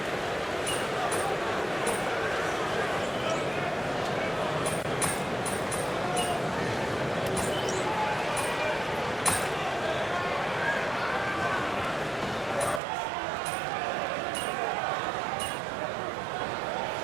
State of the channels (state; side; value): drops out; left; at 12.8 s